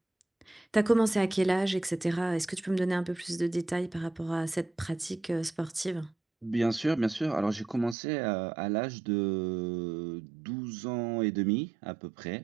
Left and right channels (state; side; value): drops out; left; at 8.0 s